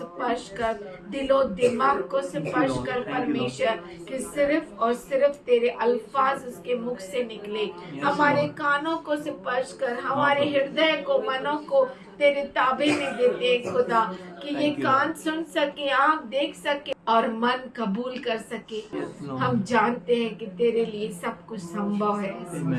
कर, दिलो दिमाग को स्पर्श कर परमेश्वर, कि सिर्फ और सिर्फ तेरे अल्फाज उसके मुख से निकले। हमारे कानों को स्पर्श कर, हमारे हृदय को, मनों को तेरे ताबे में देते खुदा, कि ये कान सुन सके, आँख देख सके और मन कबूल कर सके। हम जानते हैं कि तेरे लिए सब कुछ संभव है।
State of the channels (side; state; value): both; identical; correlation 1.00